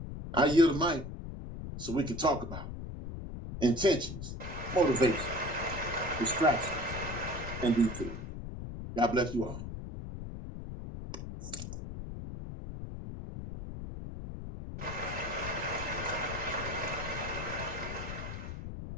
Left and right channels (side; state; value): left; noise; rumble, 8 dB below the sound